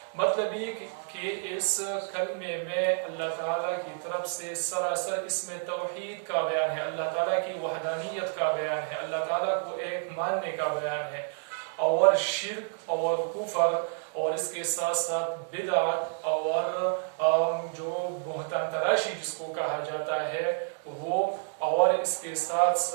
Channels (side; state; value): left; silent; digital silence